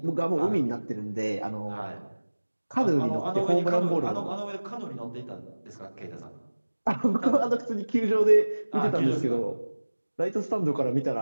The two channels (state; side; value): inverted; both; correlation -1.00